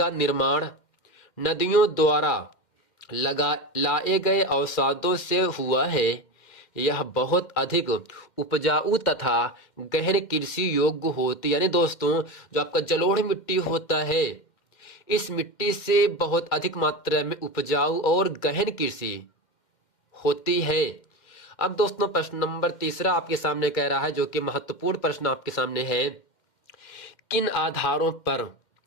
निर्माण नदियों द्वारा लाए गए अवसादों से हुआ है। यह बहुत अधिक उपजाऊ तथा गहन कृषि योग्य होती, यानी दोस्तों जो आपका जलोढ़ मिट्टी होता है, इस मिट्टी से बहुत अधिक मात्रा में उपजाऊ और गहन कृषि होती है। अब दोस्तों प्रश्न नंबर 3 आपके सामने कह रहा है, जो कि महत्वपूर्ण प्रश्न आपके सामने है, किन आधारों पर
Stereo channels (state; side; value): late; right; 2.1 ms